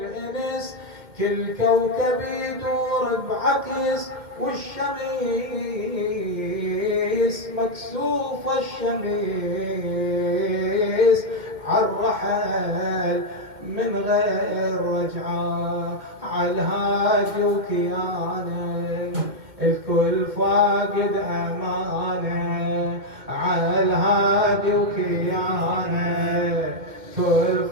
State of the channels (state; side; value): late; left; 2.3 ms